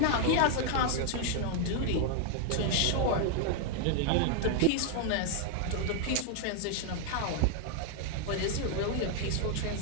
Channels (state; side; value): different; both; correlation 0.00